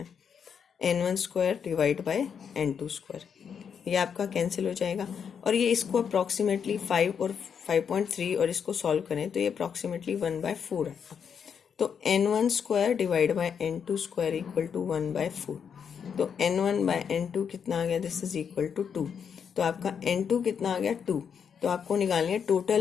n1 square divide by n2 square. ये आपका कैंसिल हो जाएगा और ये इसको अप्रॉक्सीमेटली 5 और 5.3 और इसको सॉल्व करें तो ये अप्रॉक्सीमेटली 1/4 आएगा. तो n1 square divide by n2 square equal to 1/4. तो n1 बाय n2 कितना आ गया, दिस इज इक्वल टू 2. तो आपका n2 कितना आ गया 2. तो आपको निकालनी है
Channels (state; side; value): quieter; right; 7.2 dB